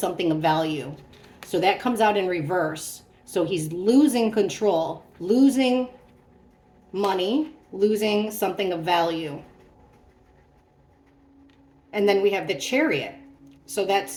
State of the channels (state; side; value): identical; both; correlation 1.00